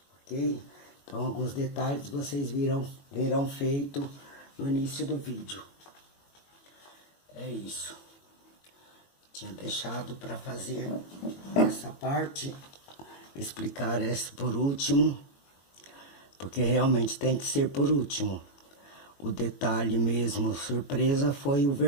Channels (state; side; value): late; right; 21 ms